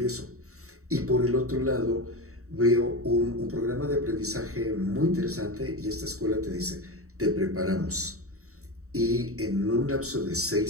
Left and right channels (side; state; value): left; late; 0.64 ms